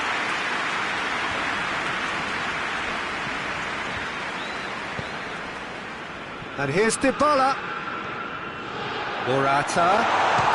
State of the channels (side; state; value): both; identical; correlation 1.00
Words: And here's Dybala. Morata